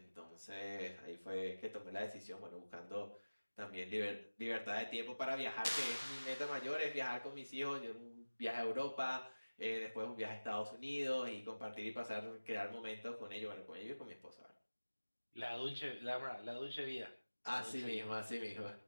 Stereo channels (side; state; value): both; inverted; correlation -1.00